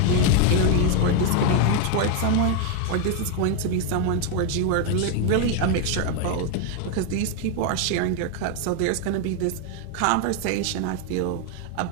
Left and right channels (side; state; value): both; different; correlation 0.01